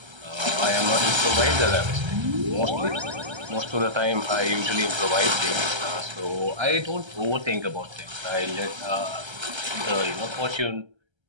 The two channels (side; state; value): left; late; 1.3 ms